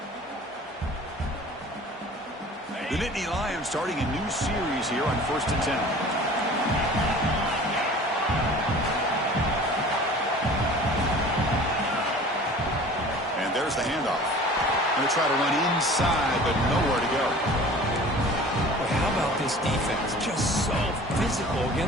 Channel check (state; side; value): normal; both; correlation 0.44